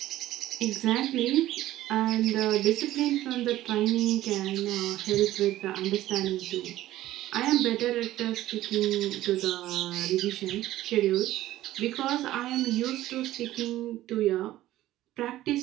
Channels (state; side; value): quieter; left; 14.8 dB